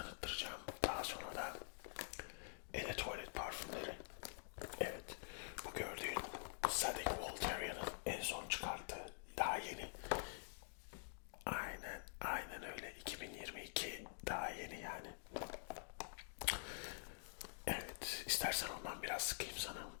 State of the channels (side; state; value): right; silent; digital silence